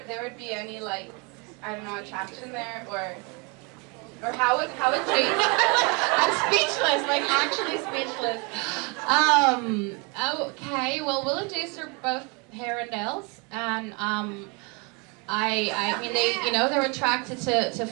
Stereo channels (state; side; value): quieter; left; 31.3 dB